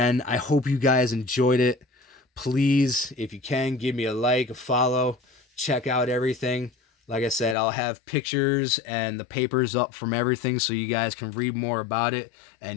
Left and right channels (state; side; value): drops out; right; at 7.6 s